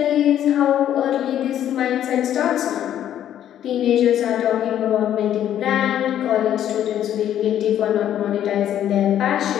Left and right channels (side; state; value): right; quieter; 10.9 dB